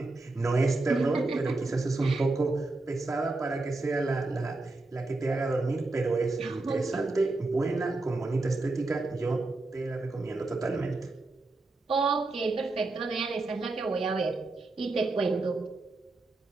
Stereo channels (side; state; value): left; quieter; 3.2 dB